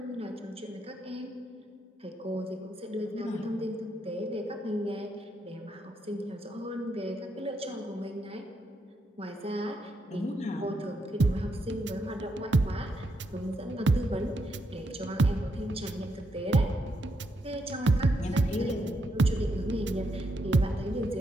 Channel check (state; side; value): normal; both; correlation 0.80